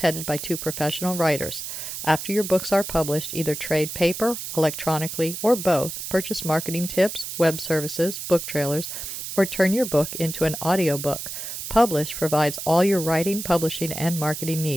headed by 2 professional writers. After your books are published, either trade paper, electronically, or both, purchase marketing tips, web services, book trailers, or turn your book into an audiobook. Publish provides all your writing, publishing, and marketing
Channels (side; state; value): right; noise; hiss, 7 dB below the sound